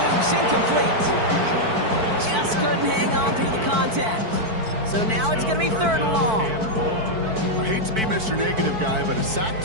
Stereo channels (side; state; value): left; late; 4.5 ms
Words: incomplete. Just couldn't hang on through the contact. So now it's going to be 3rd and long. I hate to be Mr. Negative guy, but a sack